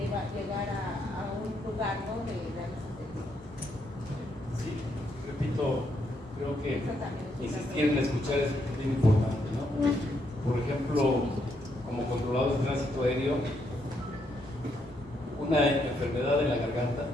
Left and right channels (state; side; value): normal; both; correlation 0.76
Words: llegar a un lugar, ¿no?, de darles atención. Sí, repito, creo que insistir en escuchar es bien importante, ¿no? Por ejemplo, como controladores de tránsito aéreo, una enfermedad en la garganta,